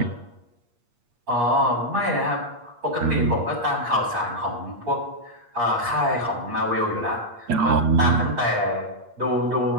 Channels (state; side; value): late; left; 8.5 ms